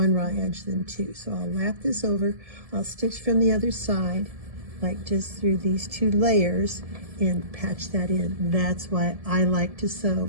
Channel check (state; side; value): late; left; 1.7 ms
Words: raw edge than two. So I'll lap this over. I'll stitch from the other side, like just through these two layers, and patch that in. That's why I like to